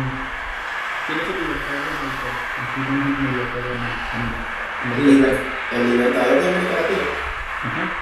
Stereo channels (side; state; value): both; identical; correlation 1.00